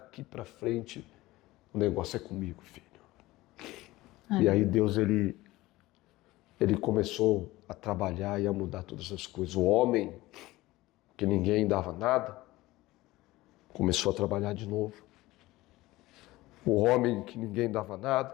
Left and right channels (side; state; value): right; quieter; 18.5 dB